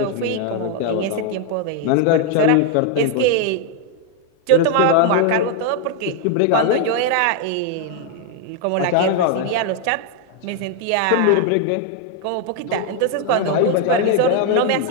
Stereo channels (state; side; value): different; both; correlation 0.00